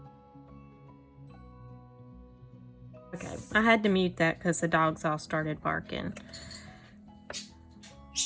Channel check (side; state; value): both; identical; correlation 1.00